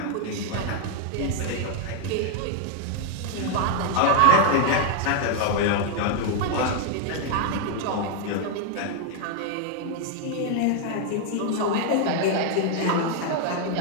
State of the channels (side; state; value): both; different; correlation 0.00